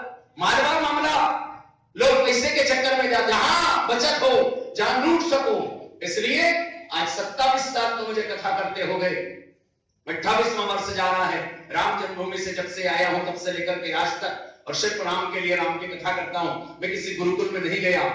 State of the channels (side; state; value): both; identical; correlation 1.00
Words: मालवा मामला, लोग पैसे के चक्कर में जहां बचत हो, जहां लूट सको, इसलिए आज 27 साल तो मुझे कथा करते हो गए, 28वां वर्ष जा रहा है। राम जन्मभूमि से जब से आया हूं तब से लेकर के आज तक और सिर्फ राम के लिए राम की कथा करता हूं। मैं किसी गुरुकुल में नहीं गया,